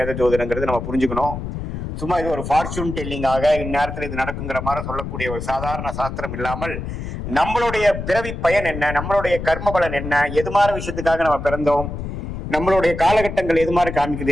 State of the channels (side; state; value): left; noise; rumble, 6 dB below the sound